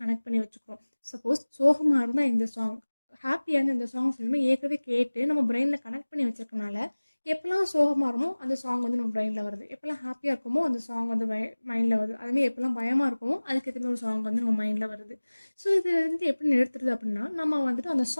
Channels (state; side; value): inverted; both; correlation -1.00